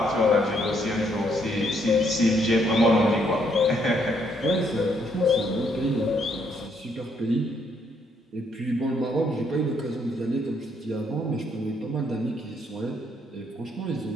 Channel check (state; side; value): normal; both; correlation 0.71